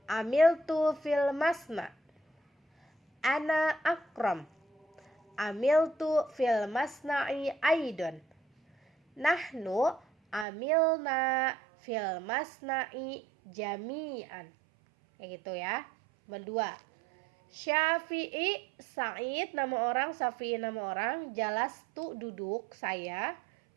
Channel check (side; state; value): left; drops out; at 10.5 s